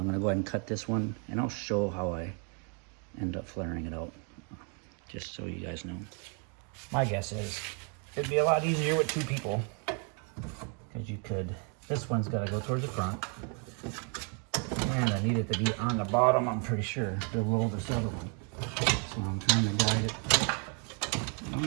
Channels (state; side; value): quieter; left; 37.9 dB